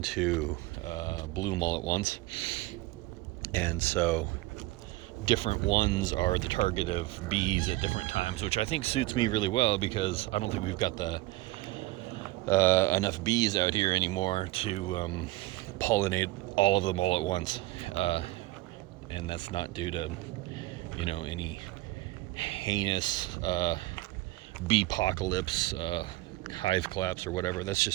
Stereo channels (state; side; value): quieter; left; 19.1 dB